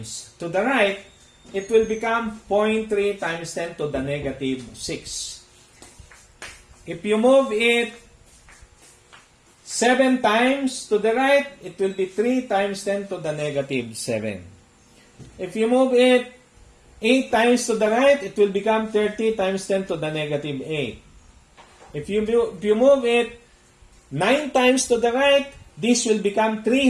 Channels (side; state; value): both; identical; correlation 1.00